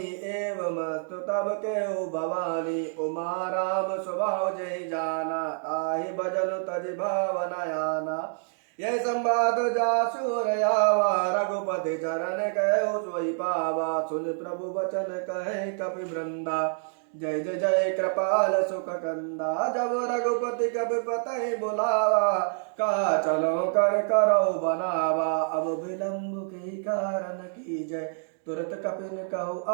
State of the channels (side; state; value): left; silent; digital silence